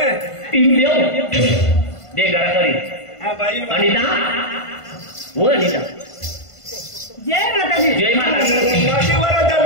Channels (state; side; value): late; right; 1.5 ms